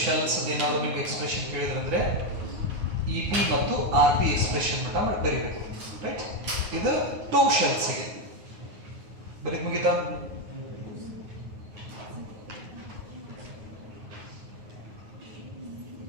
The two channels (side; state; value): left; late; 9.5 ms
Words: shells ಅದೇನಾದರೂ ನಿಮಗೆ ಎಕ್ಸ್ಪ್ರೆಷನ್ ಕೇಳಿದ್ರಂದ್ರೆ EP ಮತ್ತು RP expression ಮಟ್ಟ ಬರೀಬೇಕು, ರೈಟ್. ಇದು two shells ಗೆ ಬರೀ ಮುಗಿತಾ.